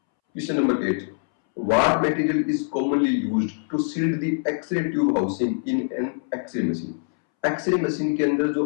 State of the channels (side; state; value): right; silent; 63 dB below the other